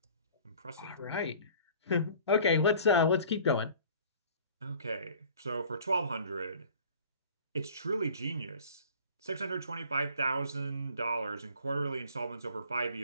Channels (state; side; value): inverted; both; correlation -0.49